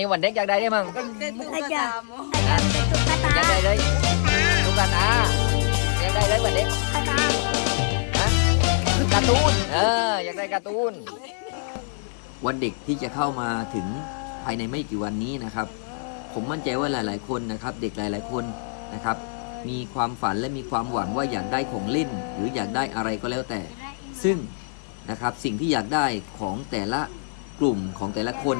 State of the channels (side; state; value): right; silent; digital silence